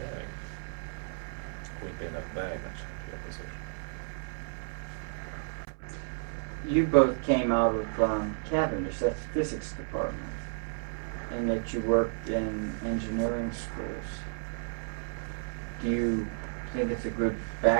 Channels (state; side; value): silent; left; 56 dB below the other